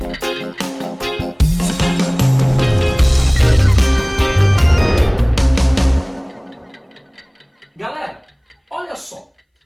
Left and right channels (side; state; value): both; identical; correlation 1.00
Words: Galera, olha só,